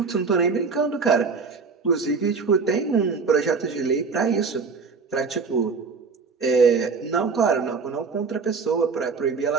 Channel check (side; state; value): left; quieter; 4.9 dB